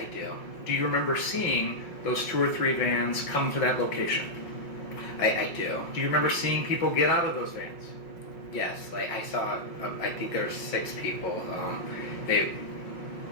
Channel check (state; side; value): late; right; 5.5 ms